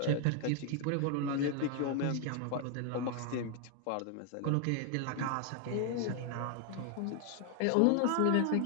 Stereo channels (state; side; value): different; both; correlation 0.00